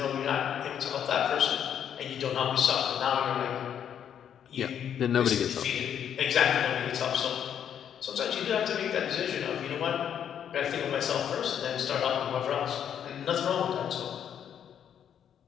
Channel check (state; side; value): quieter; right; 9.0 dB